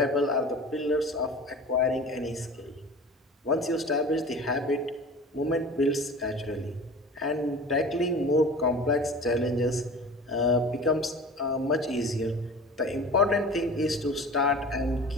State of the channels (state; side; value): normal; both; correlation 0.39